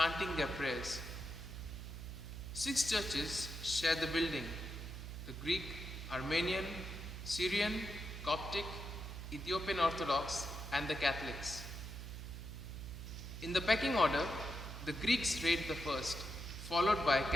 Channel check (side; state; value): right; noise; hum, 8 dB below the sound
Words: their prayers. 6 churches share the building: the Greek, Armenian, Syrian, Coptic, Ethiopian Orthodox, and the Catholics. In the pecking order, the Greeks rate the first, followed by